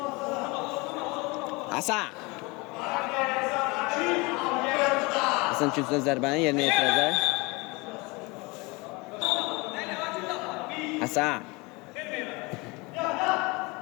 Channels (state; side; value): quieter; right; 26.0 dB